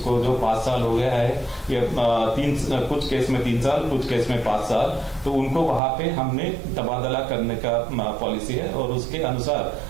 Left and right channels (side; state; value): left; drops out; at 5.8 s